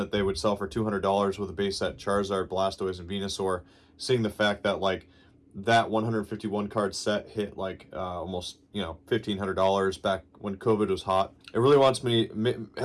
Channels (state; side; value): identical; both; correlation 1.00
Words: they would sell for $200 with a base set Charizard, Blastoise, and Venusaur, seeing the fact that like that 151 card set hit like almost $1,500 back when COVID was hot. It really